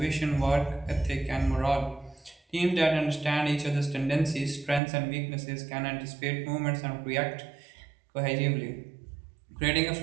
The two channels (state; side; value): drops out; left; at 4.8 s